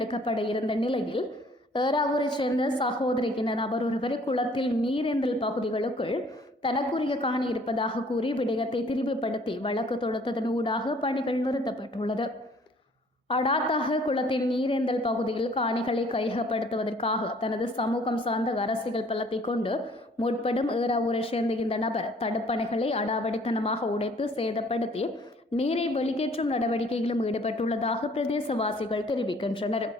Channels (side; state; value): both; normal; correlation 0.57